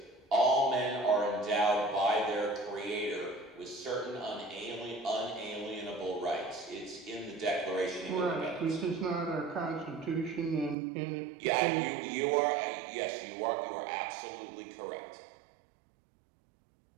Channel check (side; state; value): left; drops out; at 10.8 s